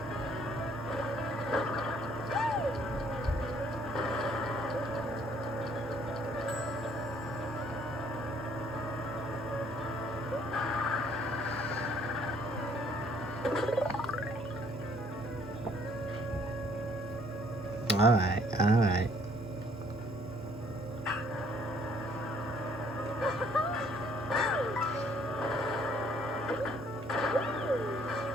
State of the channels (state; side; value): normal; both; correlation 0.63